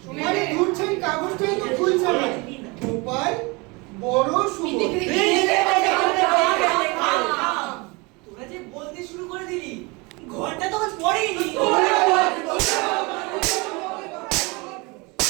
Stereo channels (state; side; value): quieter; left; 26.8 dB